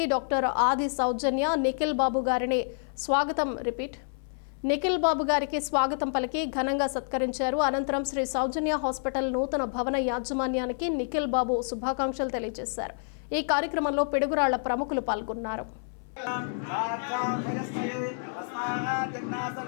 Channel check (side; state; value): right; silent; 59 dB below the other